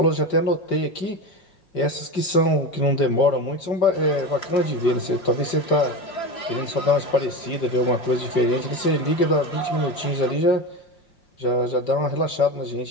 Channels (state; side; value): late; right; 5.1 ms